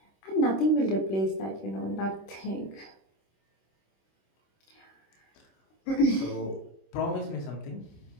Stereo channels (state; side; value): late; right; 26 ms